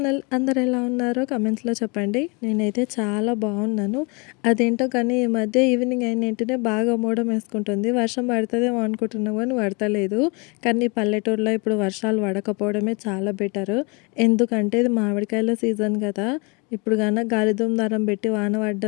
అందరు ఎలా ఉన్నారో కమెంట్స్లో చెప్పండి. నేనైతే చాలా బాగున్నాను. అదేంటో కానీ ఈ మధ్య ఈవినింగ్ అయిన వెంటనే బాగా మూడం వేసుకుంటుంది. వర్షం పడుతుందేమో అనుకుంటున్నాం కానీ పడతలేదు. కానీ పల్లెటూరులో ఇప్పుడు వర్షాలు పడకపోవడమే చాలా బెటర్. ఎందుకంటే ఇది మామిడికాయల సీజన్ కదా. ఇప్పుడు కన్నా గాలిదుమ్ దారం పెట్టి వాన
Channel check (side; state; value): right; quieter; 30.6 dB